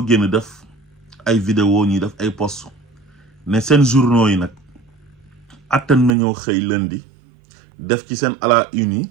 génn def ay vidéo ñuy def ay post ne seen journaux yi nag attan nañoo xëy lundi def ci seen à la une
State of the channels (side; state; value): left; drops out; at 6.1 s